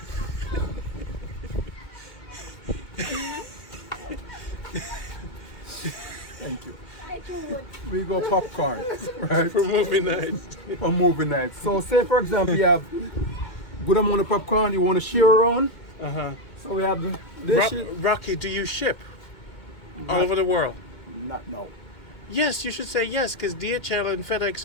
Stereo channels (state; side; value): late; right; 2.2 ms